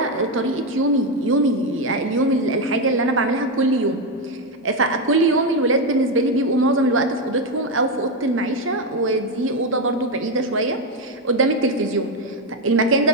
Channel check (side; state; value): both; normal; correlation 0.07